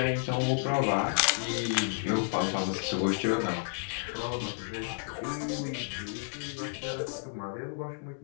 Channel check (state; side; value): silent; right; digital silence